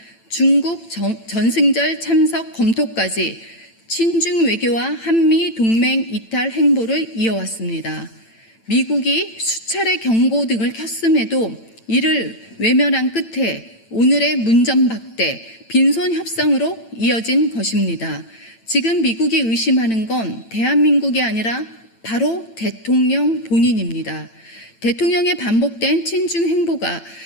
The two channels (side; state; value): right; late; 8.9 ms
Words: 중국 전승절 참석 검토까지 친중 외교와 한미 동맹 이탈 행보를 이어왔습니다. 미국이 수차례 경고 등을 켰음에도 이를 외면한 끝에 오늘의 문전박대, 빈손 협상으로 이어진 것입니다. 지금 미국이 의심하는 건 대한민국이 아니라 바로 대통령 본인입니다. 대통령의 반복된 친중 행보가